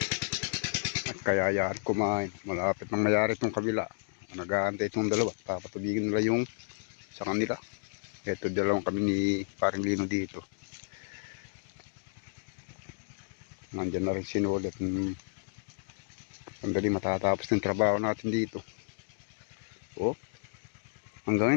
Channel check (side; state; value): right; silent; digital silence